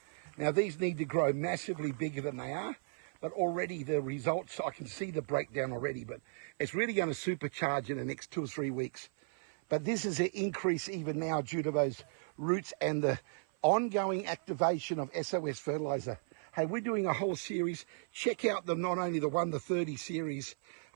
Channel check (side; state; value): left; silent; 54 dB below the other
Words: Now these need to grow massively bigger than they are, but already the results, I can see the breakdown already, but it's really going to supercharge in the next 2 or 3 weeks. But this is an increase even now due to those roots and the ongoing activation of SOS fertilizer. Hey, we're doing a whole series. Check out not only the 1 to 30 series,